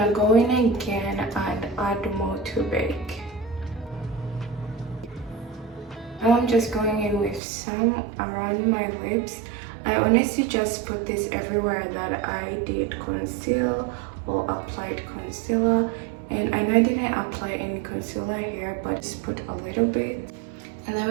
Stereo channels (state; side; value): drops out; left; at 7.4 s